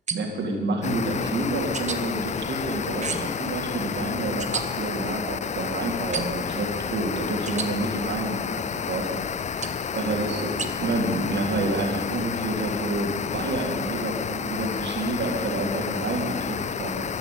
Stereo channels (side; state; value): both; normal; correlation 0.31